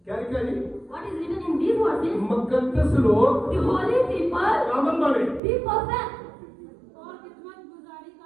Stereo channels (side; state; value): left; drops out; at 5.4 s